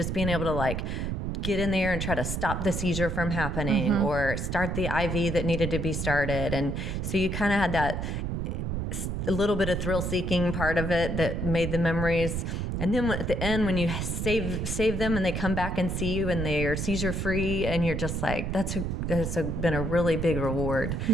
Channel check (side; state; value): right; noise; rumble, 2 dB below the sound